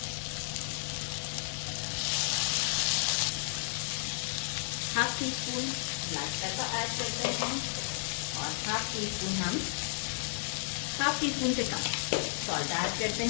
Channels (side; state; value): right; silent; 56 dB below the other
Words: Half tea spoon black pepper add करते हैं और हाफ टी स्पून से कम सॉल्ट ऐड करते